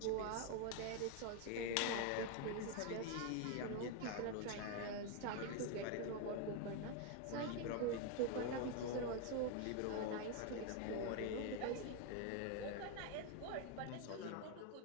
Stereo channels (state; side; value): different; both; correlation 0.01